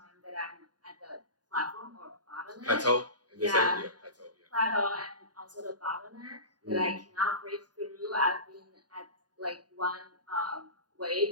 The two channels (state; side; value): late; left; 0.69 ms